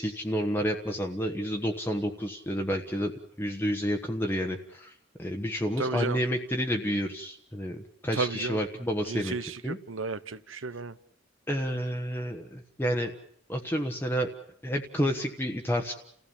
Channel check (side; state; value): both; normal; correlation 0.67